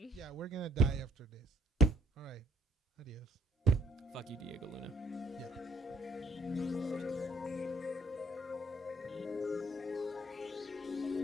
Yeah, we're gonna die after this. All right. Adios. Fuck you, Diego Luna. Yeah.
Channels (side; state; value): both; normal; correlation 0.64